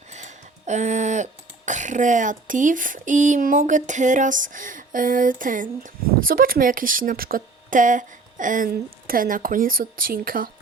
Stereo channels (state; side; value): quieter; left; 3.8 dB